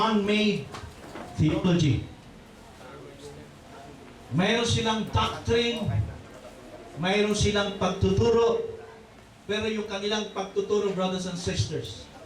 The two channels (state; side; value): identical; both; correlation 1.00